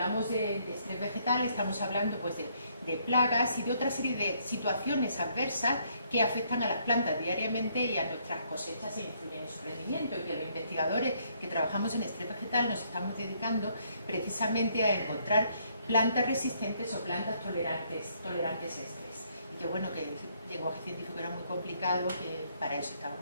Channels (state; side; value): inverted; both; correlation -0.69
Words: de estrés vegetal estamos hablando pues de plagas y de otra serie de situaciones adversas que afectan a las plantas diariamente y a nuestras cosechas e influyen en su rendimiento, y que los investigadores que trabajamos en estrés vegetal nos estamos dedicando precisamente a encontrar plantas resistentes o plantas tolerantes a estrés. Y que bueno, que el lenguaje científico era muy complicado, que para eso